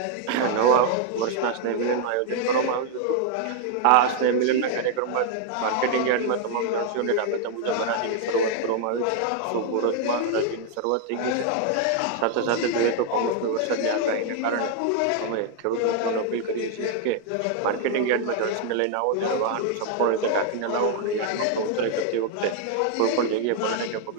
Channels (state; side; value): different; both; correlation 0.00